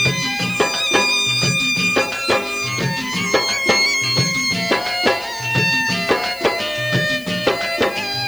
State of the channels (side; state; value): left; noise; hiss, 19 dB below the sound